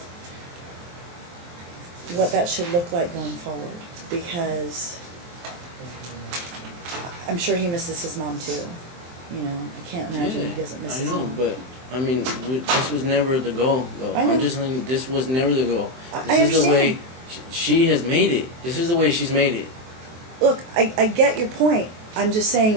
what that should look like going forward, because I'm sure he misses his mom too. You know, I can't imagine he doesn't miss his I know, mom. but I mean, this was never the goal, though. I know. I'm just saying, this was never the goal. I This is the way understand. she has made it. This is the way she's made it. Look, I get your point. I'm just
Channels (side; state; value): left; late; 23 ms